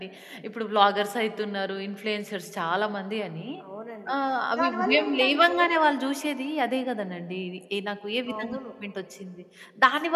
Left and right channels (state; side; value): identical; both; correlation 1.00